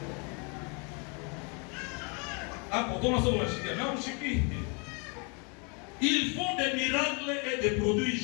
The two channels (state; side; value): quieter; right; 34.2 dB